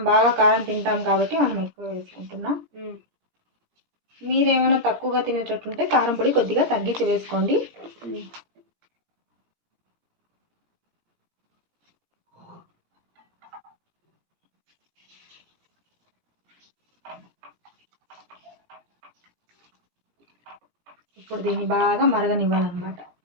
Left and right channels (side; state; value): left; late; 17 ms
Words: బాగా కారం తింటాం కాబట్టి మనం ఎక్కువ వేసుకుంటున్నాం. మీరేమైనా తక్కువగా తినేటట్టుంటే కారం పొడి కొద్దిగా తగ్గించి వేసుకోండి. ఇప్పుడు దీన్ని బాగా మరగనివ్వాలన్నమాట.